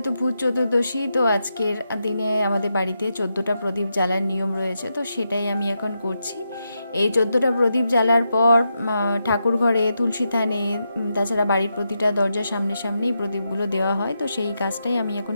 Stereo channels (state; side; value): inverted; both; correlation -0.85